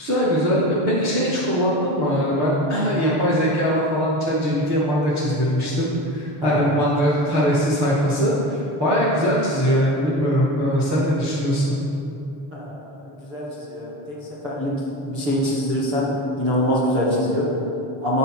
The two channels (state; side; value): late; left; 6.9 ms